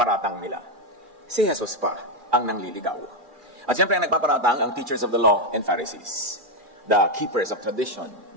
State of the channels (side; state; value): left; late; 2.4 ms